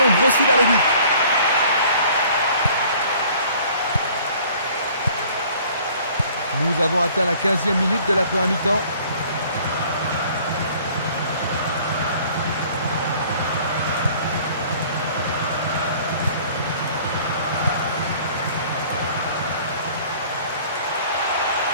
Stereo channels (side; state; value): both; inverted; correlation -0.53